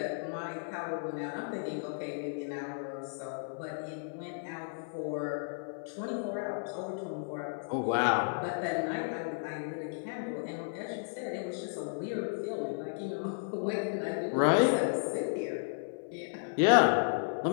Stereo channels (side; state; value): right; silent; 55 dB below the other